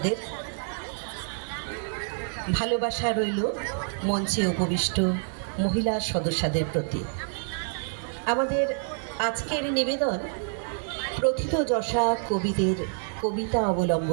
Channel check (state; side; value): silent; left; 60 dB below the other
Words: ভালোবাসা রইল মঞ্চে উপবিষ্ট মহিলা সদস্যদের প্রতি। আমাদের আজকের নিবেদন প্রথিতযশা কবিদের কবিতা